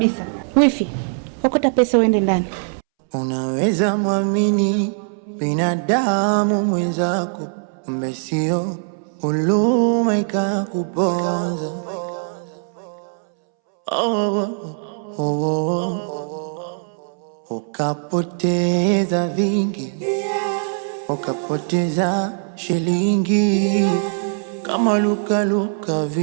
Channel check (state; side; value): silent; left; 65 dB below the other